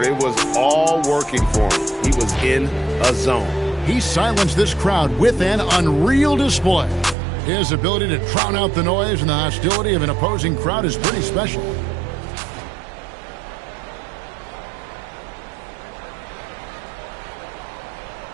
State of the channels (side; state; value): left; drops out; at 7.2 s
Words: it was all working for him. He was in a zone. He silenced this crowd with an unreal display. His ability to drown out the noise and the hostility of an opposing crowd is pretty special.